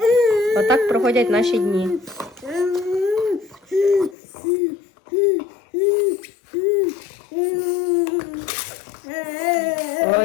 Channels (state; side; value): drops out; right; at 4.2 s